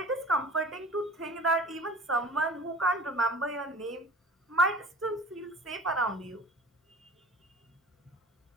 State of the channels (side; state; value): both; normal; correlation 0.42